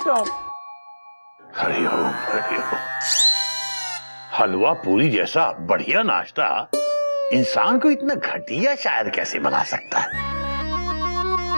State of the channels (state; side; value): inverted; both; correlation -1.00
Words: हरिओम हरिओम। हलवा पूरी जैसा बढ़िया नाश्ता इंसान को इतना घटिया शायर कैसे बना सकता है?